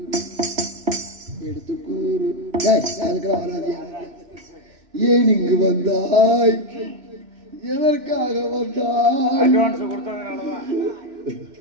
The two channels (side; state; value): left; late; 3.0 ms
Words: எடுத்து கூறு அதுக்கெல்லாம் வராதியா? ஏன் இங்கு வந்தாய், எதற்காக வந்தாய்?